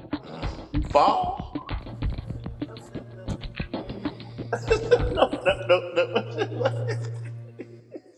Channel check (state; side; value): identical; both; correlation 1.00